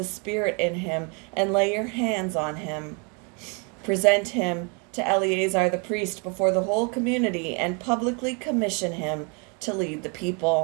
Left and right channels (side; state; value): left; quieter; 34.4 dB